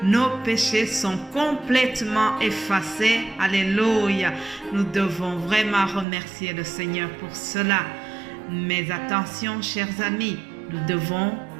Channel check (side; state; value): left; drops out; at 6.1 s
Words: nos péchés sont complètement effacés. Alléluia. Nous devons vraiment remercier le Seigneur pour cela. Mais attention, chers amis, nous devons